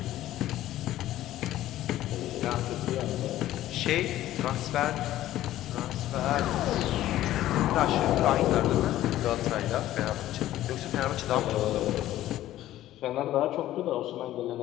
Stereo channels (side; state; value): right; quieter; 14.0 dB